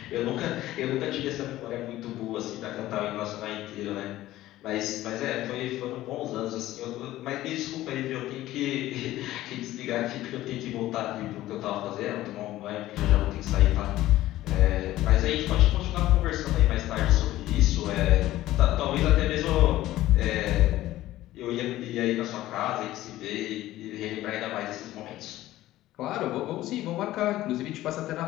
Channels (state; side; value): quieter; right; 15.3 dB